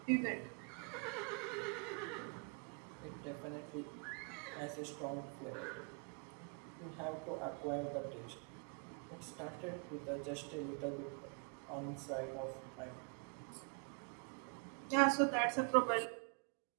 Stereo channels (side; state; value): left; quieter; 38.8 dB